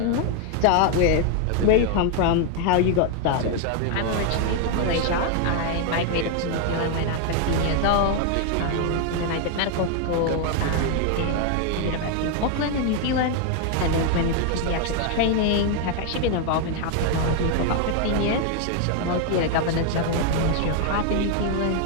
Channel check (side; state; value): both; different; correlation 0.00